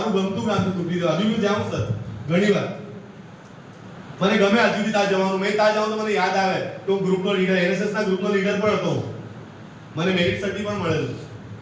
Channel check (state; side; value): identical; both; correlation 1.00